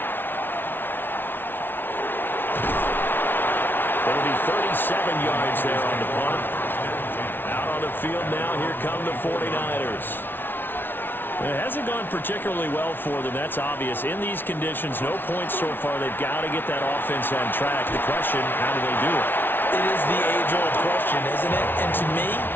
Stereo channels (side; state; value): right; late; 0.10 ms